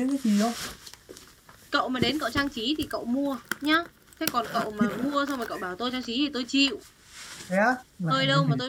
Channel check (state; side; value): identical; both; correlation 1.00